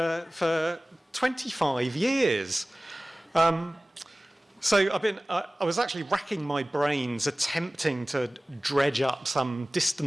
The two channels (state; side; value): normal; both; correlation 0.98